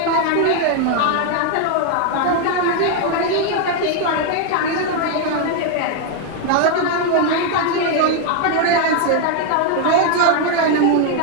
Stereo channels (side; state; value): both; different; correlation 0.01